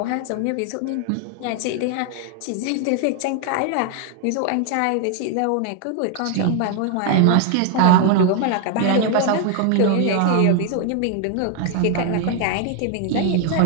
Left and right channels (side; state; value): both; different; correlation 0.00